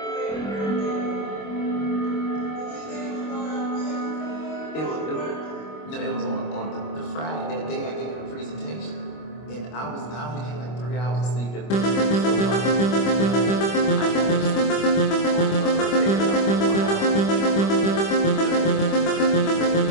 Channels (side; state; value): right; late; 25 ms